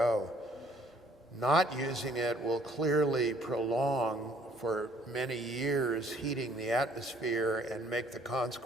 Not using it will clearly prolong for many years heating the atmosphere and make the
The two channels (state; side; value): normal; both; correlation 0.61